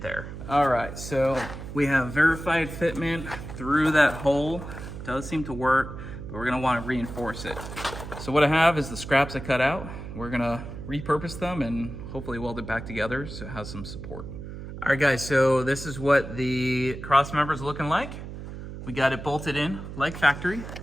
there. All right, so we have verified fitment through that hole. Does seem to work, but we're gonna wanna reinforce it. So what I have is the scraps I cut out. We're gonna repurpose them and hopefully weld it back together so it has some support. All right, guys, so this is what the cross member is looking like. We got it bolted in like factory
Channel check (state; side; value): noise; right; hum, 10 dB below the sound